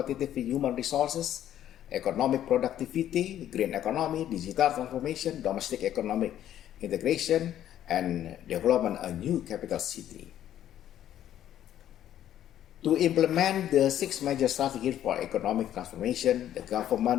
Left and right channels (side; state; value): right; quieter; 11.4 dB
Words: human resources, economic productivity, green economy, digital transformation, domestic economic integration, and development a new capital city. To implement the 6 major strategies for economic transformation, the